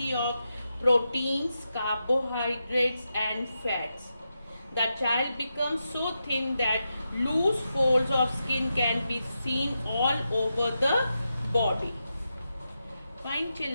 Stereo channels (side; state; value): both; inverted; correlation -0.88